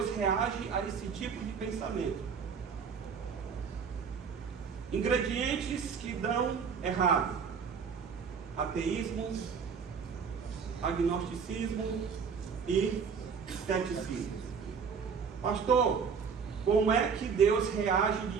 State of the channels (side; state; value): left; quieter; 6.2 dB